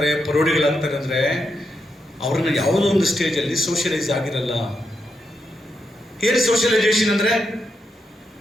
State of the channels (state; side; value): normal; both; correlation 0.83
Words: ಪರೋಡಿಗಳಾಗ್ತಾರೆ ಅಂದರೆ ಅವ್ರನ್ನ ಯಾವುದೋ ಒಂದು ಸ್ಟೇಜಲ್ಲಿ ಸೋಷಿಯಲೈಸ್ ಆಗಿರಲ್ಲ. ಏನು ಸೋಷಿಯಲೈಸೇಷನ್ ಅಂದರೆ?